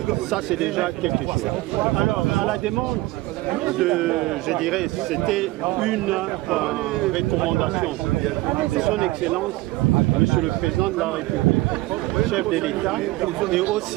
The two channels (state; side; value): quieter; left; 19.4 dB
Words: Ça c'est déjà quelque chose. Alors à la demande je dirais, c'était une recommandation de son Excellence, Monsieur le Président de la République, chef de l'État, et